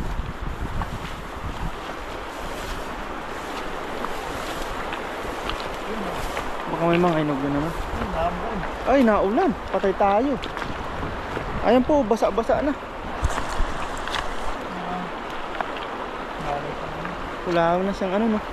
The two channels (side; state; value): both; identical; correlation 1.00